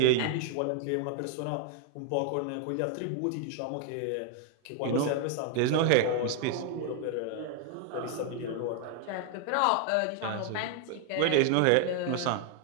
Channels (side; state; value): both; different; correlation 0.00